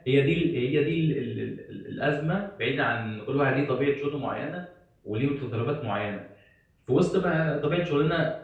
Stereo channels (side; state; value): both; identical; correlation 1.00